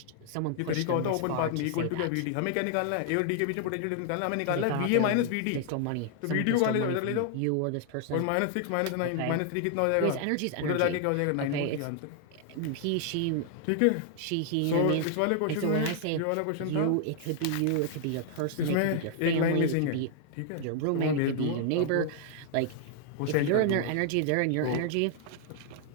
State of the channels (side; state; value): both; different; correlation 0.00